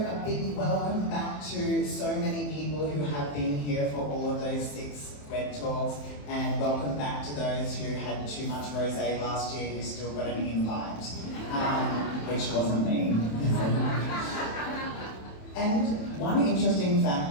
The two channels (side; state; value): right; late; 27 ms